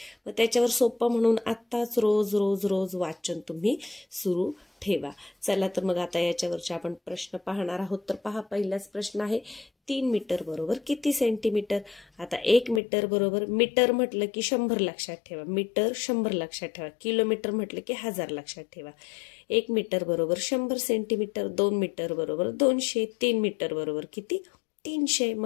मग त्याच्यावर सोपं म्हणून आत्ताच रोज रोज रोज वाचन तुम्ही सुरू ठेवा। चला तर मग आता याच्यावरचे आपण प्रश्न पाहणार आहोत। तर पहा, पहिलाच प्रश्न आहे, 3 मीटर बरोबर किती सेंटीमीटर? आता 1 मीटर बरोबर, मीटर म्हटलं की 100 लक्षात ठेवा, मीटर 100 लक्षात ठेवा, किलोमीटर म्हटलं की 1000 लक्षात ठेवा। 1 मीटर बरोबर 100 सेंटीमीटर, 2 मीटर बरोबर 200, 3 मीटर बरोबर किती? 300।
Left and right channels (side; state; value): right; drops out; at 12.8 s